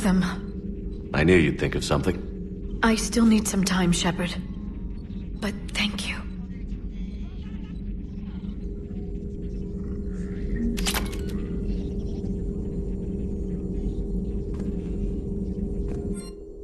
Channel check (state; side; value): identical; both; correlation 1.00